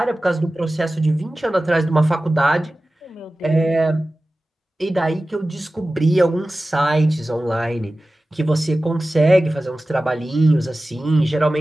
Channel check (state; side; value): normal; both; correlation 0.96